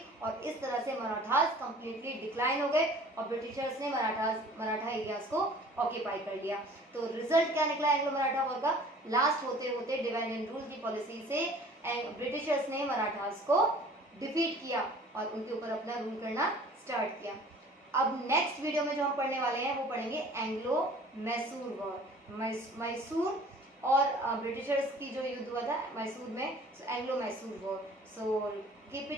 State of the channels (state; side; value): normal; both; correlation 0.48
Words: और इस तरह से मराठास कंप्लीटली डिक्लाइन हो गए और ब्रिटिशर्स ने मराठा एरियाज को ऑक्यूपाई कर लिया। तो रिजल्ट क्या निकला एंग्लो मराठा वॉर का, लास्ट होते होते डिवाइड एंड रूल की पॉलिसी से ब्रिटिशर्स ने मराठास को डिफीट किया और उनके ऊपर अपना रूल करना स्टार्ट किया। अब नेक्स्ट वीडियो में जो हम पढ़ने वाले हैं वो पढ़ेंगे एंग्लो मैसूर वॉर, मैसूर और ब्रिटिशर्स की जो युद्ध हुआ था मैसूर में, Anglo Mysore war. So keep